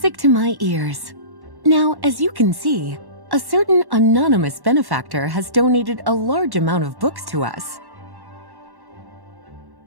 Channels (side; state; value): left; late; 1.1 ms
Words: to my ears. Now, as you can see, a certain anonymous benefactor has donated a large amount of books to us.